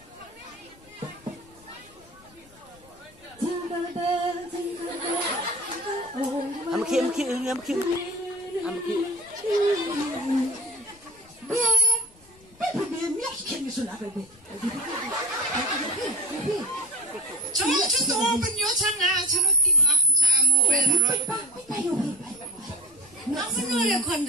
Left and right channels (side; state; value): left; noise; rumble, 27 dB below the sound